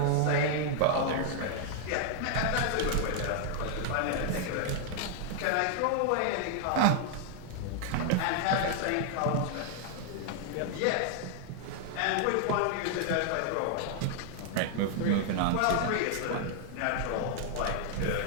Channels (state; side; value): different; both; correlation 0.00